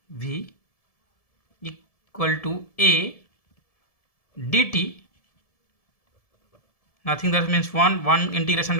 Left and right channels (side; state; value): right; late; 1.7 ms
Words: v equal to a dt, nothing, that means 1 integration